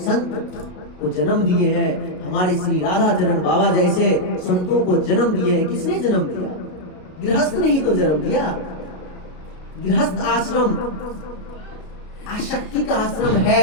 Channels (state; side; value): late; right; 33 ms